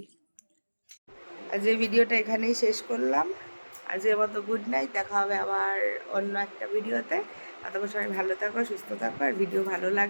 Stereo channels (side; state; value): both; inverted; correlation -1.00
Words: আজ এই ভিডিওটা এখানেই শেষ করলাম। আজকের মতো গুড নাইট, দেখা হবে আবার অন্য একটা ভিডিওতে। ততক্ষণ সবাই ভালো থাকো, সুস্থ থাকো, আর ভিডিও ভালো